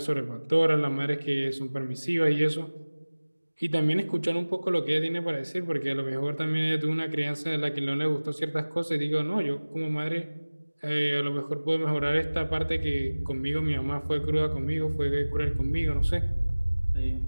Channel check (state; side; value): inverted; both; correlation -1.00